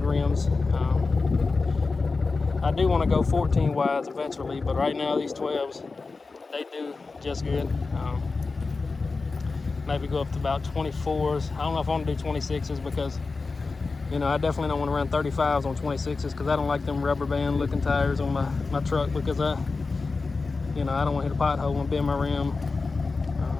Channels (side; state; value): right; quieter; 4.1 dB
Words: rims. I do want to go 14 wides eventually, but right now these 12s, they do just good. Maybe go up to about 24s. I don't know if I want to do 26s because, you know, I definitely don't want to run 35s on 26s because I don't like them rubber band looking tires on my truck because I don't want to hit a pothole and bend my rim.